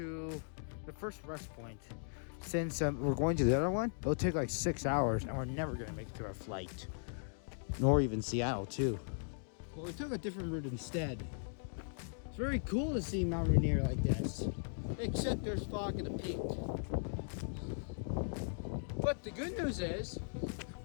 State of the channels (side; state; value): right; silent; digital silence